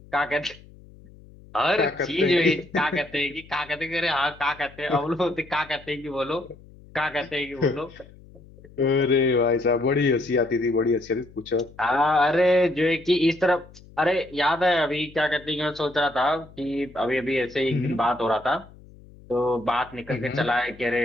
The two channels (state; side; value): noise; left; hum, 22 dB below the sound